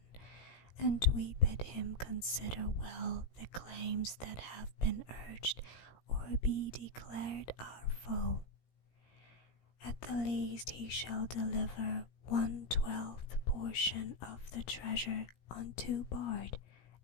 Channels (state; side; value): late; right; 17 ms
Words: and we bid him consider well the claims that have been urged or be declared our foe. At the least he shall deliver 1/12 portion of the treasure unto Bard